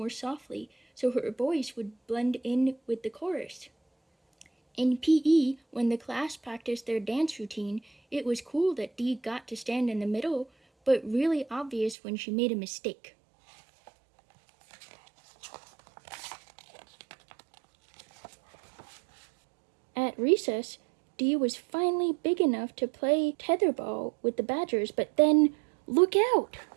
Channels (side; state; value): left; drops out; at 12.0 s